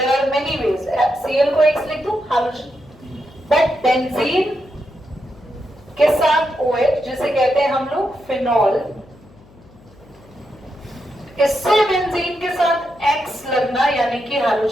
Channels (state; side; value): noise; left; hum, 26 dB below the sound